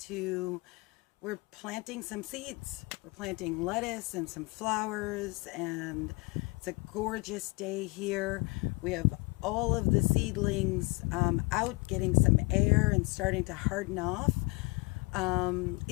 we're planting some seeds. We're planting lettuce and some flowers, and it's a gorgeous day here. We have all of the seedlings out getting some air and starting to harden off.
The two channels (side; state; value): right; quieter; 26.9 dB